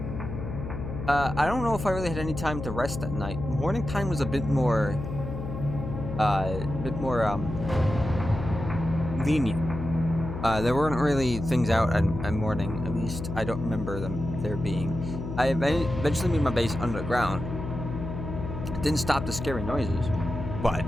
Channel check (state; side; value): noise; left; hum, 7 dB below the sound